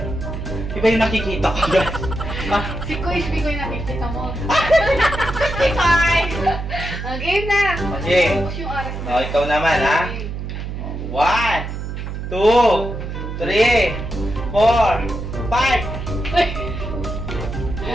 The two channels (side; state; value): right; noise; hum, 6 dB below the sound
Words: Iba yung nakikita ko guys. Ah, Si Kuis, Mikoy nakikita mo. Mikoy! Game na! Okay. Tapos yung oras na. Oh, ikaw naman ha. 1, 2, 3, 4, 5.